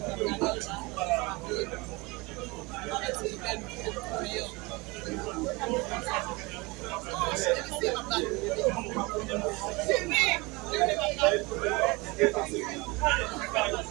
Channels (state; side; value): quieter; left; 25.0 dB